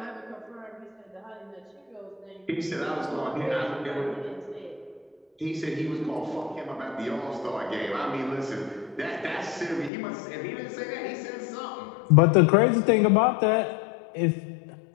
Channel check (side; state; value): right; drops out; at 9.9 s